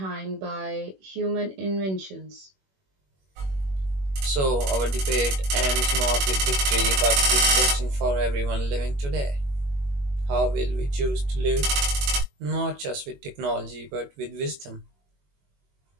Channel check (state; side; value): late; left; 21 ms